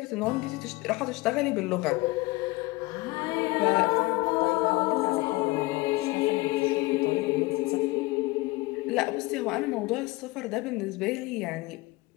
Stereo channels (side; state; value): right; quieter; 21.9 dB